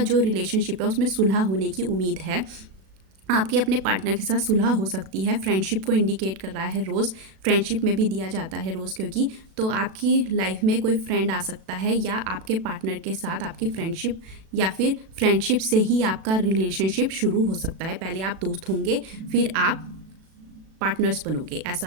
जो रिलेशनशिप है उसमें सुलह होने की उम्मीद है। आपके अपने पार्टनर के साथ सुलह हो सकती है। फ्रेंडशिप को इंडिकेट कर रहा है रोज़, फ्रेंडशिप में भी दिया जाता है रोज़, क्योंकि तो आपकी लाइफ में कोई फ्रेंड आ सकता है या आपके पार्टनर के साथ आपकी फ्रेंडशिप, या फिर फ्रेंडशिप से ही आपका रिलेशनशिप शुरू हो सकता है। पहले आप दोस्त होंगे, फिर आप पार्टनर्स बनोगे,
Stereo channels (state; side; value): late; left; 37 ms